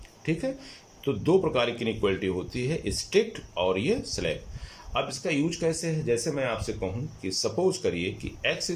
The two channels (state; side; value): identical; both; correlation 1.00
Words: ठीक है, तो दो प्रकार की इनइक्वलिटी होती है, स्ट्रिक्ट और ये स्लैक। अब इसका यूज कैसे है, जैसे मैं आपसे कहूं कि सपोज करिए कि x